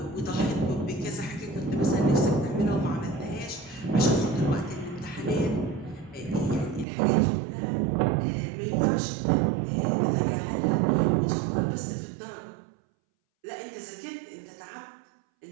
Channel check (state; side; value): drops out; left; at 6.9 s